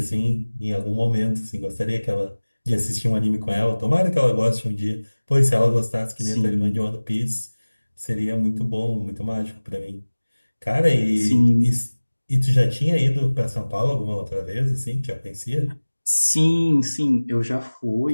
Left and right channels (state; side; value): inverted; both; correlation -1.00